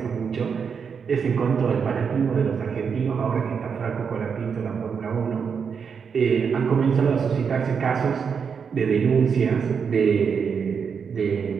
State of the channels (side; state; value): left; quieter; 6.4 dB